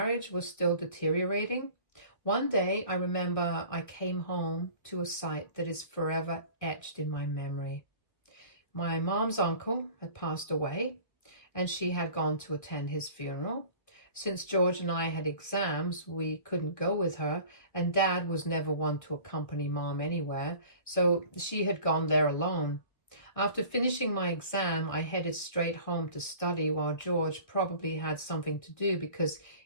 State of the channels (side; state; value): right; late; 1.6 ms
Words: was still deteriorating. One day, I remember I came home to a sight that is forever etched in my memory. My mom's uncle had passed away, and she had gone to attend his funeral. Since George and I had exams, we couldn't go with her, and Dad was never one to accompany Mom anywhere, so she had gone there alone. After finishing my exam, I headed straight home to study while George probably had something to do because